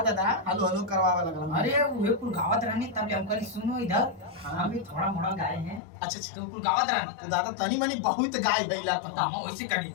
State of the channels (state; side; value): drops out; right; at 5.8 s